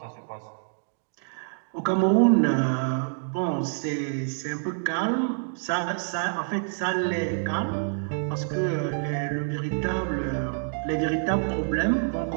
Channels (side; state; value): left; silent; digital silence